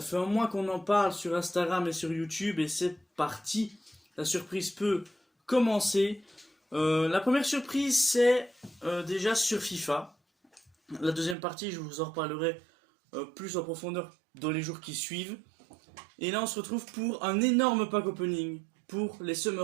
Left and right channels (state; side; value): drops out; left; at 11.4 s